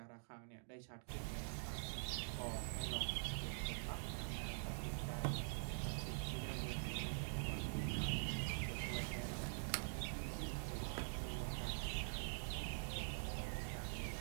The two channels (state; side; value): silent; left; digital silence